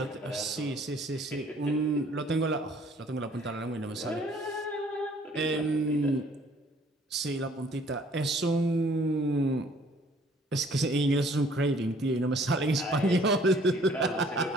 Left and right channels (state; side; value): normal; both; correlation 0.58